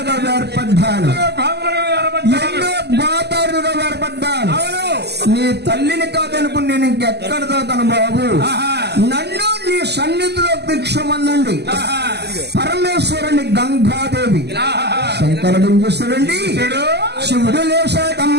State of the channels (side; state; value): left; late; 0.49 ms